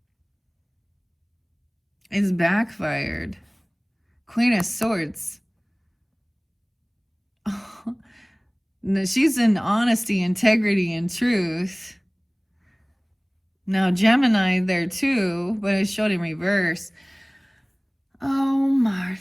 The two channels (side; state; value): both; identical; correlation 1.00